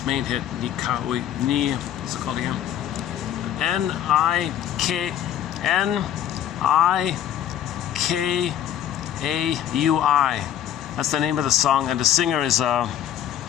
main hit, what's it called again? Nikkaui. That's the name of the song, and the singer is Brian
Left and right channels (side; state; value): right; quieter; 10.7 dB